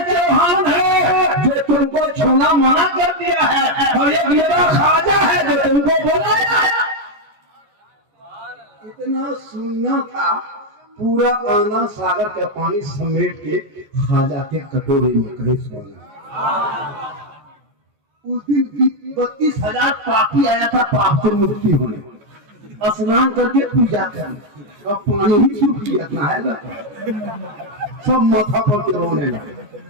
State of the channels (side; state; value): left; late; 13 ms